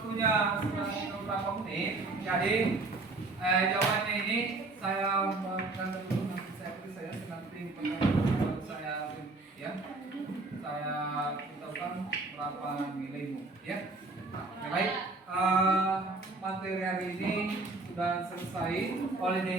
sudah beberapa menit, jadi jawabannya ini saya berikan dulu, nanti saya nanti pertanyaan saya ya, saya beritahukan berapa nilaimu ya. Baik, materi hari ini sudah selesai.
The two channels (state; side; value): quieter; left; 3.4 dB